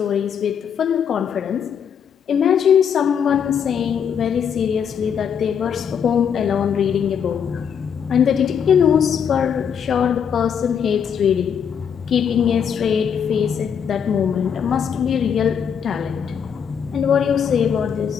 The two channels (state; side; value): quieter; right; 7.6 dB